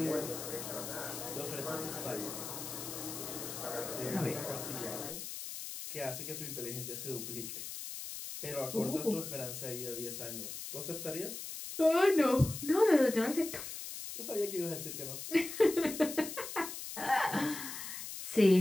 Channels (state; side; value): noise; left; hiss, 8 dB below the sound